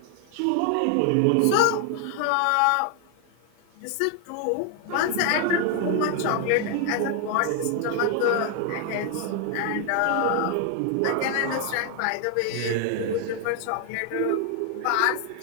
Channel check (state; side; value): different; both; correlation 0.00